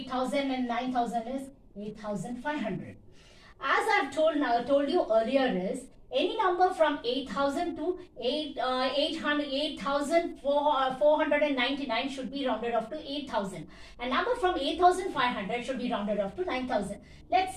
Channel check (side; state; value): both; identical; correlation 1.00